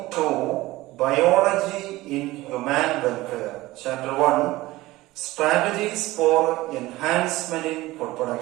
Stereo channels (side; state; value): left; quieter; 18.5 dB